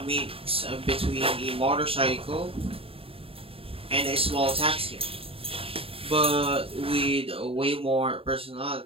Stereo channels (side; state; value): left; late; 0.27 ms